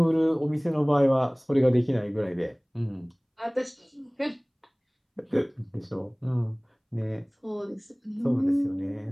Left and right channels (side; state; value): both; identical; correlation 1.00